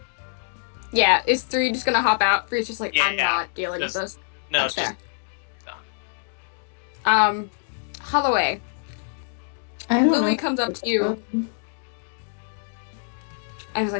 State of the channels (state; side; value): silent; right; digital silence